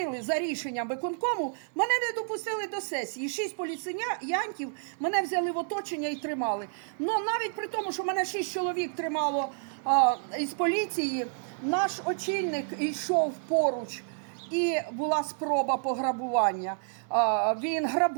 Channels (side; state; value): left; silent; digital silence